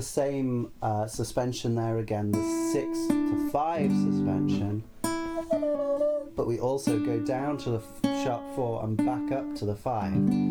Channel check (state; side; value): identical; both; correlation 1.00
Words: same suspension there again, the 6 to 5 suspension, but we also go down to the sharp 4 and back up to the 5.